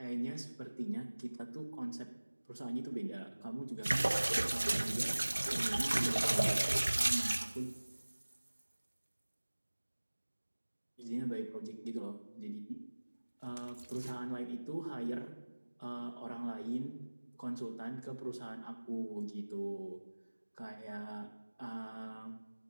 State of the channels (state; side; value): inverted; both; correlation -1.00